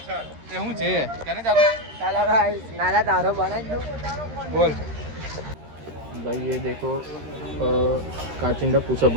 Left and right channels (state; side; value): late; left; 13 ms